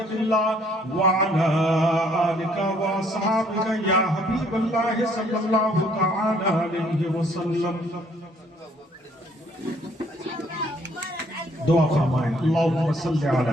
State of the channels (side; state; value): both; normal; correlation 0.64